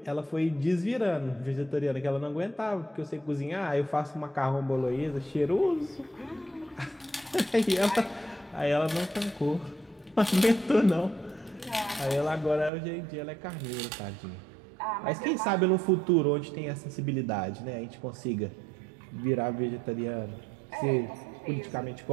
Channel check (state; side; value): drops out; left; at 12.7 s